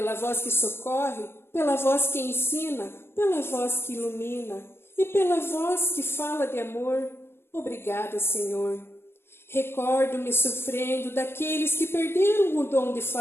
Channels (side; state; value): right; late; 0.11 ms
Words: voz que socorre, pela voz que ensina, pela voz que ilumina e pela voz que fala de amor. Obrigada, Senhor. Recordo-me sofrendo daqueles que perderam o dom de